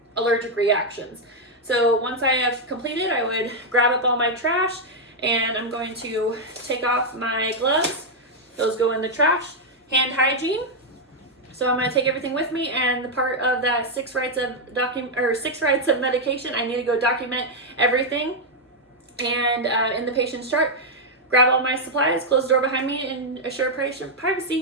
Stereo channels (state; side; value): normal; both; correlation -0.01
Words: allergic reactions. So once I have completed, I would grab up all my trash, and I'm going to take off my gloves. Those go in the trash. Hand hygiene. So I'm going to take everything with me, and the part of that 6 rights of medication, I need to go document everything. And in the patient's chart, grab all my supplies, close the door behind me, and assure patient